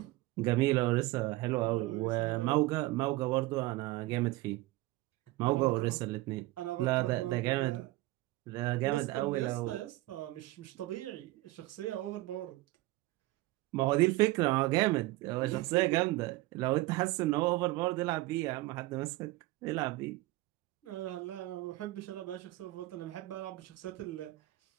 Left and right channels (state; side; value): quieter; left; 18.8 dB